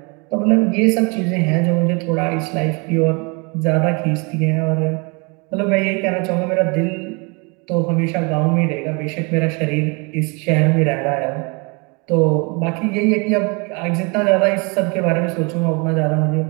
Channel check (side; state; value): left; quieter; 30.9 dB